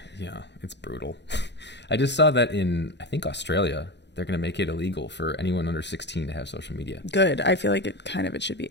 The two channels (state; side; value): late; right; 0.51 ms